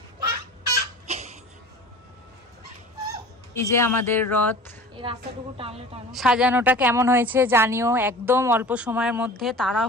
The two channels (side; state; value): both; normal; correlation 0.40